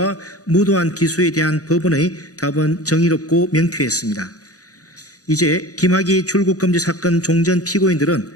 무도한 기소에 대한 법원의 답은 정의롭고 명쾌했습니다. 이제 김학의 출국금지 사건 종전 피고인들은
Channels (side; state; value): right; late; 0.67 ms